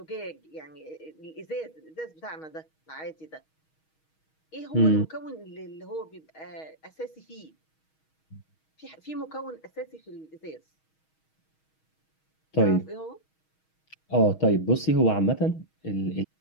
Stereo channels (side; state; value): right; late; 6.3 ms